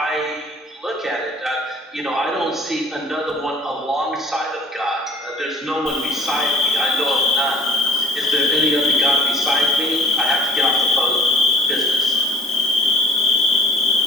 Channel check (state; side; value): normal; both; correlation 0.50